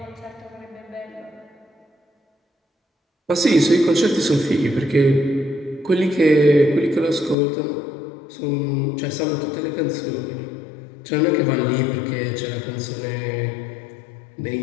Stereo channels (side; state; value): right; drops out; at 7.4 s